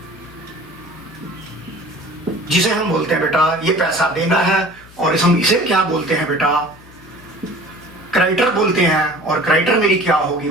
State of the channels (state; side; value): noise; left; hum, 23 dB below the sound